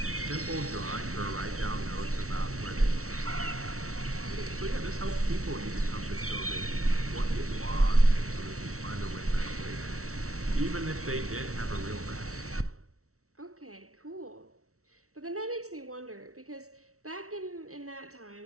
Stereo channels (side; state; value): left; late; 0.64 ms